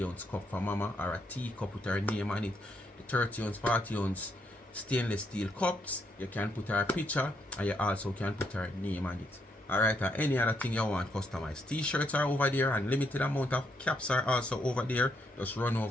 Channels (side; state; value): both; normal; correlation 0.76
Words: ounce cup for mama, or a teacup with her name on it. The 30 ounce, 40 ounce stainless steel cups, you can put her picture, and you also can put her name on it. Alright, and any other thing you want customized. T-shirts are over there, and limited amount of caps are also over there. Just run